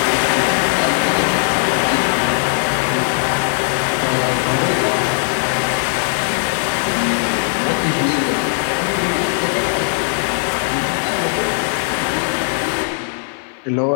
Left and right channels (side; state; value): right; silent; 61 dB below the other